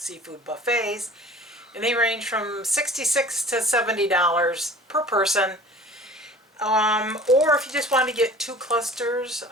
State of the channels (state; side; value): normal; both; correlation 0.44